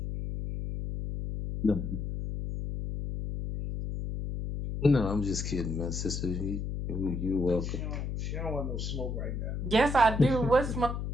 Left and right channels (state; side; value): noise; left; hum, 4 dB below the sound